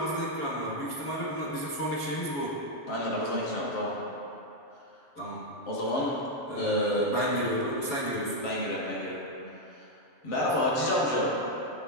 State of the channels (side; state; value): right; late; 7.1 ms